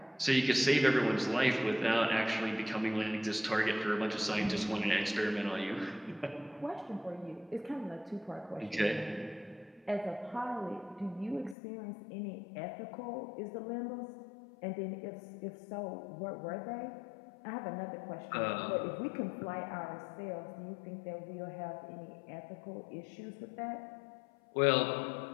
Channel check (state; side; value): drops out; right; at 11.6 s